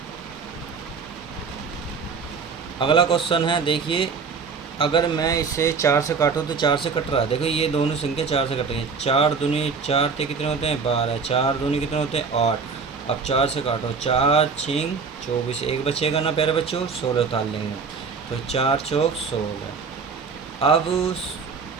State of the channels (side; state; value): left; quieter; 5.3 dB